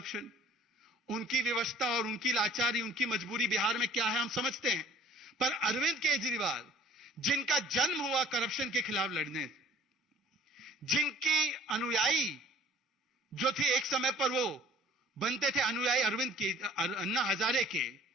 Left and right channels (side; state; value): both; normal; correlation 0.53